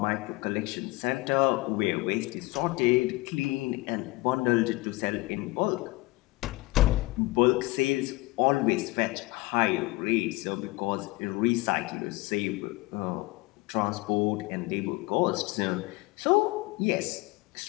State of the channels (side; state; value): right; quieter; 21.7 dB